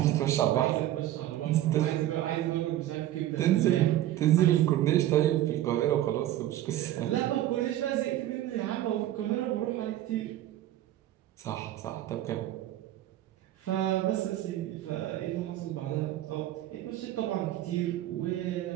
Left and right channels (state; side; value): quieter; left; 13.5 dB